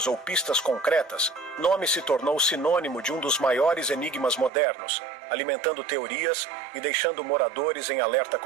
ou pistas concretas, Nome se tornou sinônimo de um dos maiores enigmas modernos, alimentando teorias e deixando moradores em alerta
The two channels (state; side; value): drops out; left; at 4.5 s